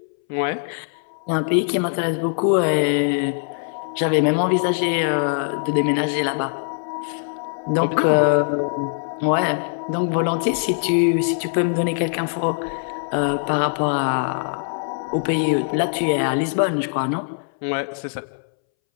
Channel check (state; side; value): silent; right; 63 dB below the other